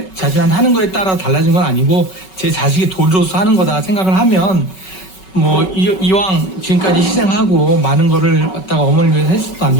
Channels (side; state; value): right; late; 5.3 ms